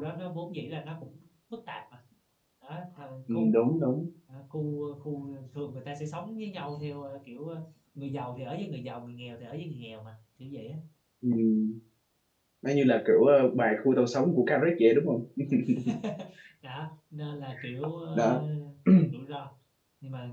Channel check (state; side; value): identical; both; correlation 1.00